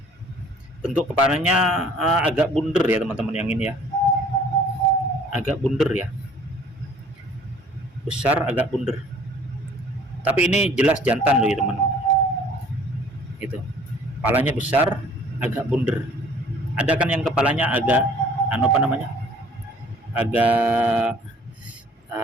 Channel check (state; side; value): normal; both; correlation 0.53